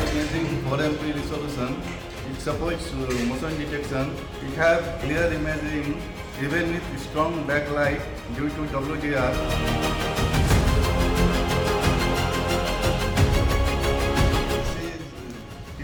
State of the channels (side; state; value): both; identical; correlation 1.00